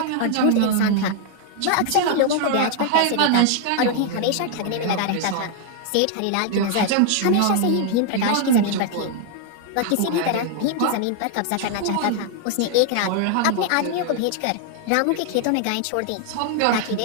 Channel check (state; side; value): different; both; correlation 0.00